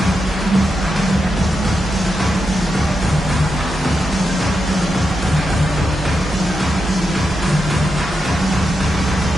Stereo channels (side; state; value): both; normal; correlation 0.87